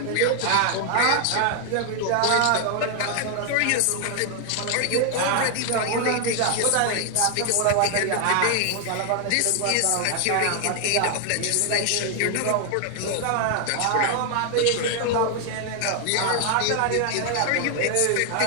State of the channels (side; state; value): both; different; correlation 0.00